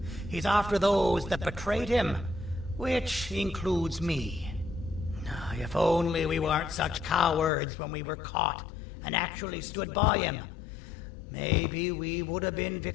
He's after those that betrayed him, which includes me. If only we weren't such cowards when we were caught and actually stood by him, maybe we would have been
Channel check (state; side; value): drops out; right; at 7.5 s